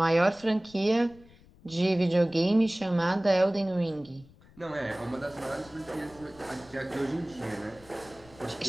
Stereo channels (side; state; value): left; noise; rumble, 25 dB below the sound